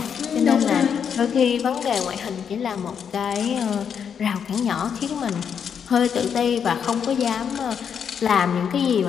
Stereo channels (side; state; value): right; quieter; 7.5 dB